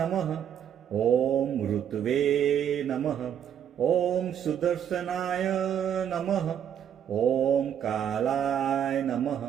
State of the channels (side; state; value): left; quieter; 9.2 dB